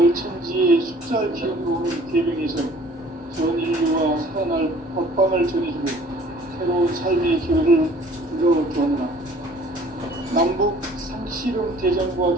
천지의 숫살 기운으로 오는 계명에서 전 인류와 살아날 법방을 전해주고 새로운 삶의 기회를 이뤄주었노라. 남북 상씨름 대전과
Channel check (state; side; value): normal; both; correlation 0.53